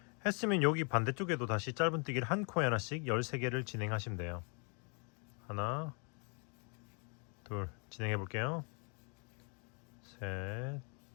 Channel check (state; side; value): quieter; right; 36.2 dB